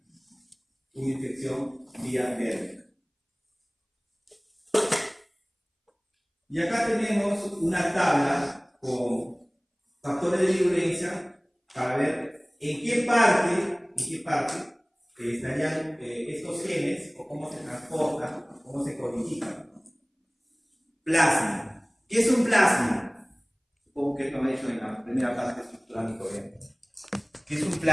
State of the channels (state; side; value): identical; both; correlation 1.00